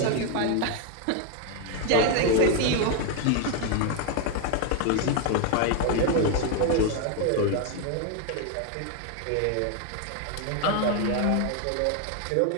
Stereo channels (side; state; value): both; different; correlation 0.01